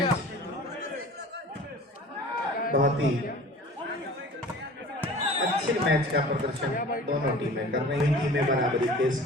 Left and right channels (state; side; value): normal; both; correlation 0.43